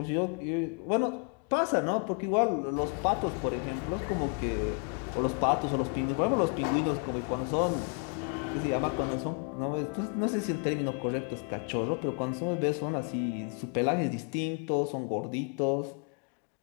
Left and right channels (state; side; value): quieter; right; 36.7 dB